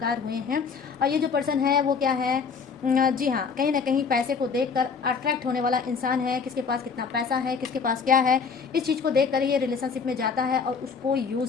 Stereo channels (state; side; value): quieter; right; 5.6 dB